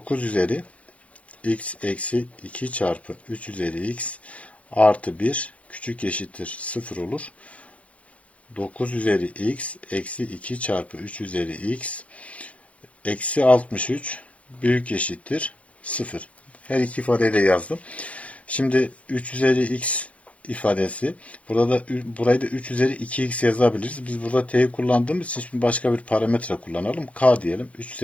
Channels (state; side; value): late; right; 0.064 ms